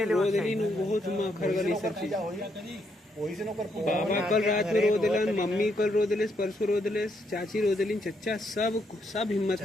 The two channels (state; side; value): normal; both; correlation 0.76